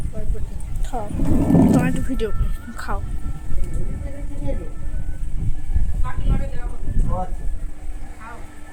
খাও, তোমার একটু ভিডিও খাও।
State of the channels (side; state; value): both; identical; correlation 1.00